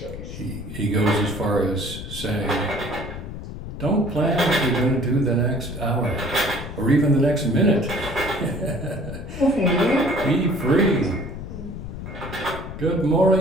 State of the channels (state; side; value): noise; left; rumble, 9 dB below the sound